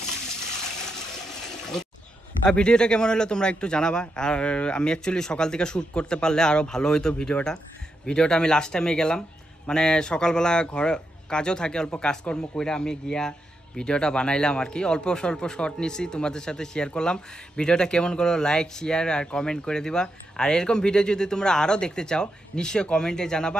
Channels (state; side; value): normal; both; correlation 0.84